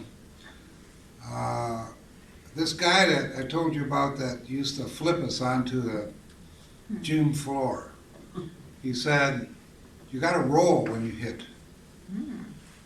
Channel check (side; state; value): both; identical; correlation 1.00